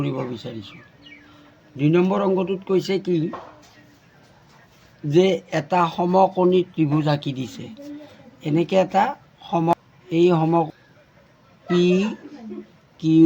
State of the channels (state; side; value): identical; both; correlation 1.00